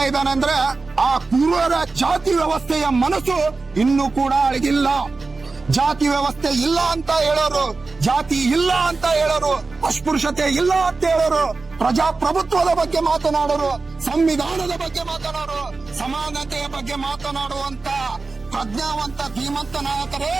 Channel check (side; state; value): left; quieter; 3.9 dB